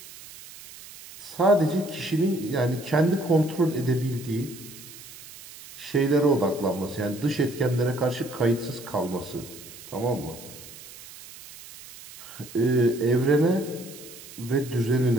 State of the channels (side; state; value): right; noise; hiss, 17 dB below the sound